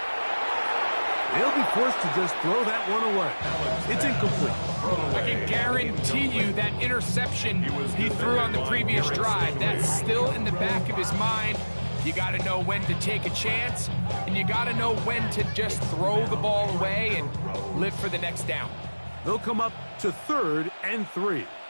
They'll be forced to just throw that one away. It's incomplete. I can guarantee you that interception he threw on the previous drive, that's still in the back of his mind. You got to know when to take a chance, and you got to know when to just throw the ball away and live for the next down. They'll come up to 3rd and 3.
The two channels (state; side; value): inverted; both; correlation -1.00